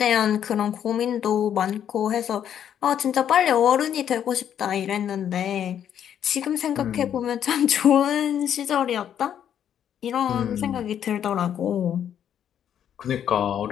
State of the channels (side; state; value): right; quieter; 9.5 dB